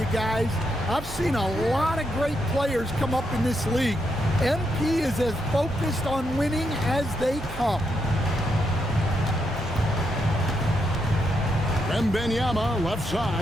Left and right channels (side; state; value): both; normal; correlation 0.80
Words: guys, I've seen a lot of great players come up in this league. MP is as focused on winning as they come. Wembanyama left